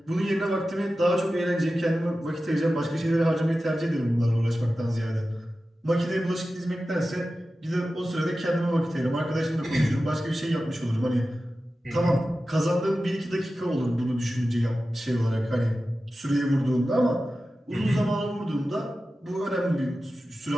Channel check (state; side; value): normal; both; correlation 0.94